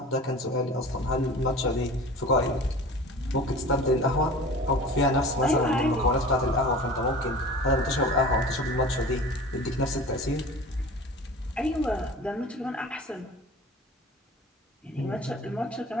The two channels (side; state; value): both; normal; correlation 0.39